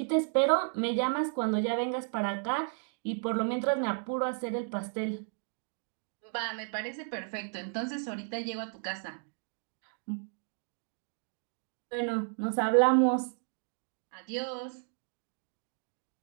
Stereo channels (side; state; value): left; silent; 56 dB below the other